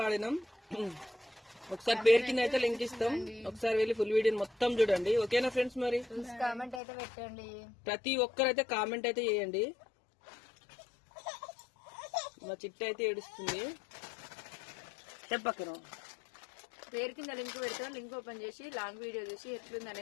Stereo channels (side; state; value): right; drops out; at 6.8 s